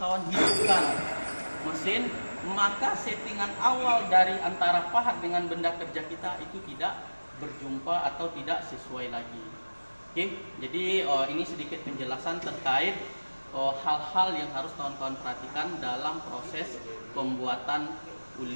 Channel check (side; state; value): both; inverted; correlation -1.00